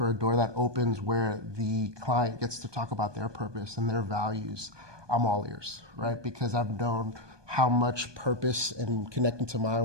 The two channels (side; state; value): left; late; 1.2 ms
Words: or a door that opens where the client gets to talk about their purpose and their values, I'm all ears, right? Because I've known how much purpose and connecting to my